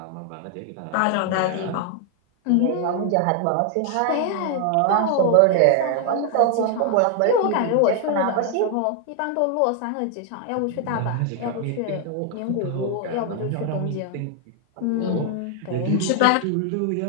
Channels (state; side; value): different; both; correlation 0.00